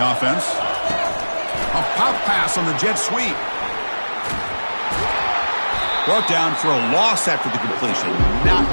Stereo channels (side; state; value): both; inverted; correlation -1.00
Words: offense. A pop pass on the jet sweep. Brought down for a loss after the completion. Not